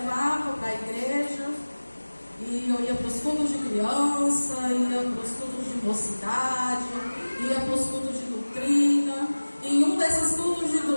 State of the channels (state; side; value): inverted; both; correlation -1.00